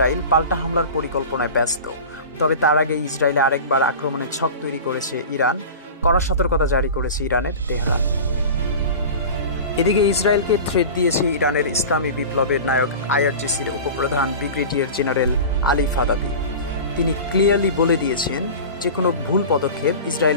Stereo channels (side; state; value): both; inverted; correlation -0.33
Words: পাল্টা হামলার পরিকল্পনায় ব্যস্ত। তবে তার আগে ইসরায়েলে আরেকবার আক্রমণের ছক তৈরি করেছে ইরান। কড়া সতর্কতা জারি করেছে ইরানের তেহরান। এদিকে ইসরায়েলকে থ্রেট দিয়েছে ইরানের ইসলামী বিপ্লবের নায়ক আইআরজিসির উপপ্রধান ব্রিগেডিয়ার জেনারেল আলী ফাদাবি। তিনি ক্লিয়ারলি বলে দিয়েছেন যে কোনো ভুল পদক্ষেপ